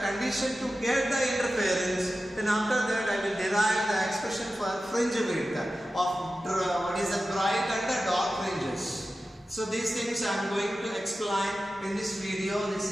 condition to get the interference, then after that I will derive the expression for fringe width of what is the bright and the dark fringes. So these things I am going to explain in this video.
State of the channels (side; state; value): both; normal; correlation 0.94